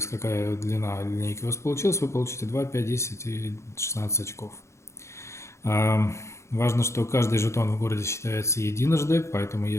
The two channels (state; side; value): late; right; 0.14 ms